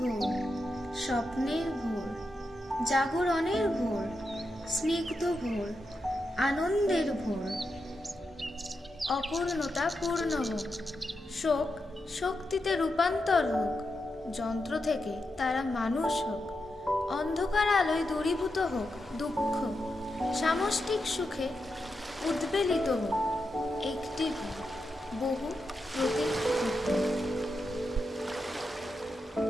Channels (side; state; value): both; normal; correlation 0.87